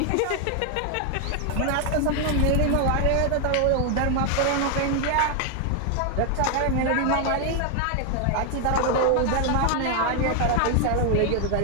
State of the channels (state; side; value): different; both; correlation 0.00